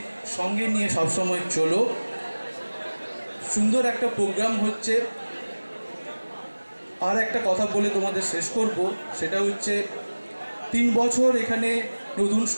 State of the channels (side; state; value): both; inverted; correlation -1.00